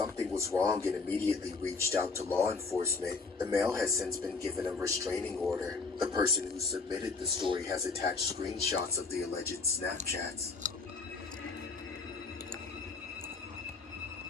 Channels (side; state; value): right; quieter; 4.3 dB